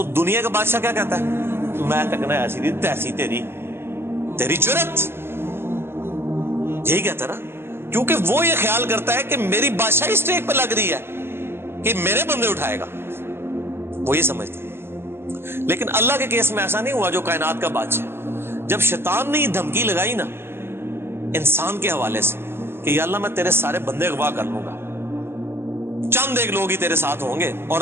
دنیا کا بادشاہ کیا کہتا ہے؟ میں تکنا ایسی دی تیسی تیری جرت، یہی کہتا نا، کیونکہ وہ یہ خیال کرتا ہے کہ میری بادشاہی اسٹیک پہ لگ رہی ہے کہ میرے بندے اٹھائے گا، وہ یہ سمجھتا ہے۔ لیکن اللہ کے کیس میں ایسا نہیں ہوا جو کائنات کا بادشاہ، جب شیطان نے یہ دھمکی لگائی نا انسان کے حوالے سے کہ یا اللہ میں تیرے سارے بندے اغوا کر لوں گا، چند ایک لوگ ہی تیرے ساتھ ہوں گے، اور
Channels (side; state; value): left; late; 0.11 ms